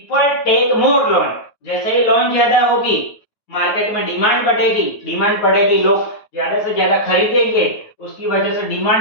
टेक मोर लोन। जैसे ही लोन ज्यादा होगी मार्केट में डिमांड बढ़ेगी, लोग ज्यादा से ज्यादा खरीदेंगे, उसकी वजह से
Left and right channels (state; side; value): late; right; 9.3 ms